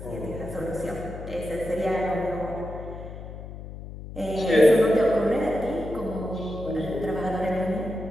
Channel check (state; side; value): noise; left; hum, 11 dB below the sound